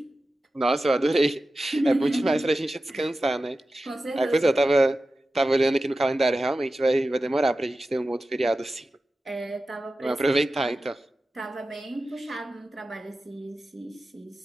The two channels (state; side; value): normal; both; correlation 0.94